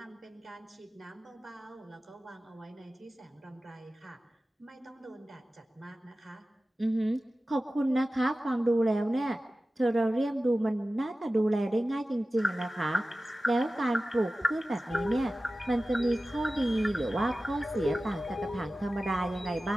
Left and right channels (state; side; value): normal; both; correlation 0.95